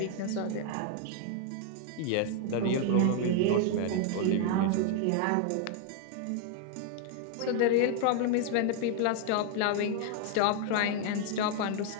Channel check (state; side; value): different; both; correlation 0.00